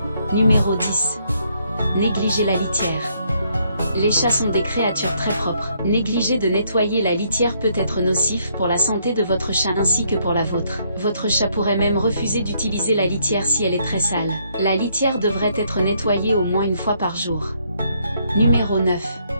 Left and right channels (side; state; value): both; inverted; correlation -0.71